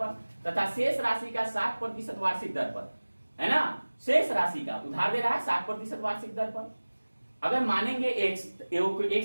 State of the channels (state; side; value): inverted; both; correlation -1.00